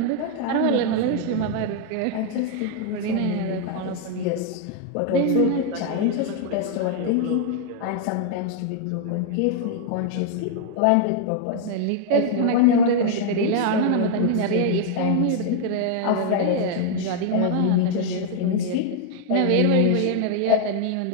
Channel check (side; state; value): both; different; correlation 0.00